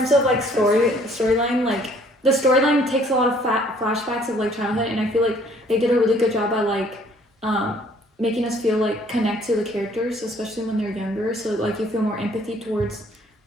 of like storyline, like the storyline takes a lot of flashbacks of like childhood, and I feel like they did a really good job at like making us feel like connect to the characters, especially when they're younger. So like you feel more empathy towards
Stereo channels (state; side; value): normal; both; correlation 0.60